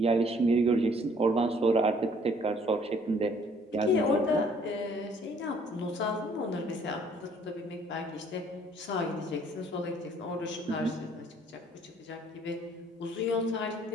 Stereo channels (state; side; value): normal; both; correlation 0.60